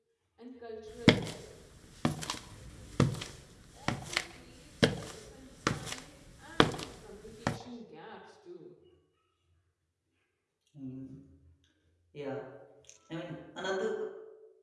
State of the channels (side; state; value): both; identical; correlation 1.00